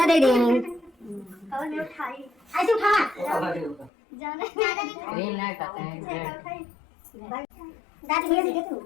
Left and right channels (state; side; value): drops out; right; at 3.9 s